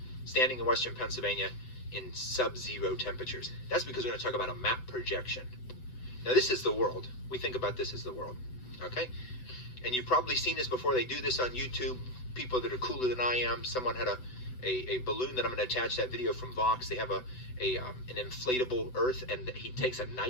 Standing in western Pennsylvania in sub-zero temperatures. That's because we're going to talk about a map projection. Now this is the world. We think about this as the world, okay? And you've probably seen this before. They do this on YouTube. People that are cooler than I am. Someone had a balloon that I'm going to attach that video from Vox. They have an inflatable Earth, and he takes a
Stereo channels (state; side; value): late; right; 7.9 ms